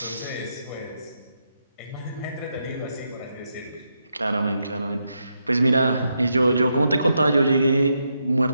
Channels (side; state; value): both; inverted; correlation -0.82